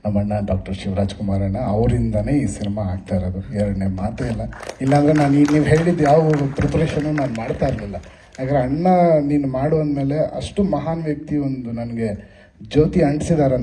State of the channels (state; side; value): identical; both; correlation 1.00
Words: ನಮ್ಮ ಅಣ್ಣ ಡಾಕ್ಟರ್ ಶಿವರಾಜ್ ಕುಮಾರ್ ಅಣ್ಣ ಅವರಿಂದನೇ ಈ ಸಿನಿಮಾ ಆಗ್ತಾ ಇರೋದು, ಎರಡನೇ ಮಾತೇ ಇಲ್ಲ. ಇಲ್ಲಾಂದರೆ ನಾನು ನೀವು ಹೇಳಿದ್ದು ಯಾವ ಪ್ರಿಪ್ರೇಷನು ನಾನು ಮಾಡ್ತಾ ಇರಲಿಲ್ಲ. ಯಾಕಂದರೆ ಅಣ್ಣ ನೀನು ಮಾಡುವಂದಮೇಲೆ ಅಷ್ಟು ಮಹಾನ್ ವ್ಯಕ್ತಿ ಒಂದು ನನಗೆ ಜ್ಯೋತಿ